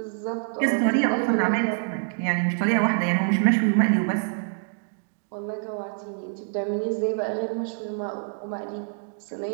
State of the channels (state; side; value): silent; left; 61 dB below the other